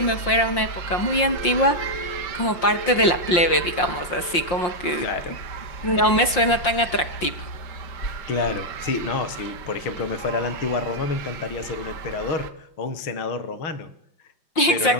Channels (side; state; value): right; late; 5.7 ms